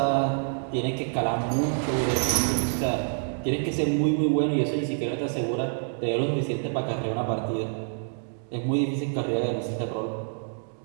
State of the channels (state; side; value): silent; left; digital silence